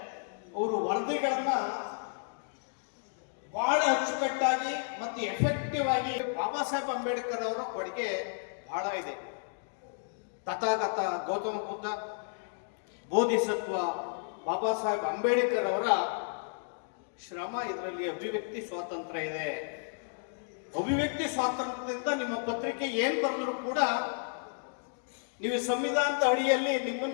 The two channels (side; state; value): right; silent; digital silence